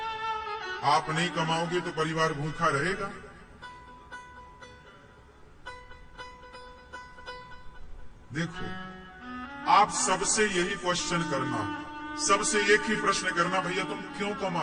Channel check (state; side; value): identical; both; correlation 1.00